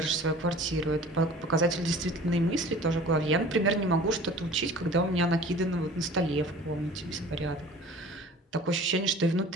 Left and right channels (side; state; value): both; normal; correlation 0.45